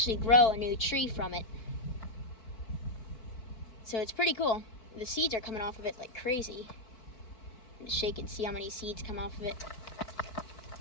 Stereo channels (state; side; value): late; right; 4.5 ms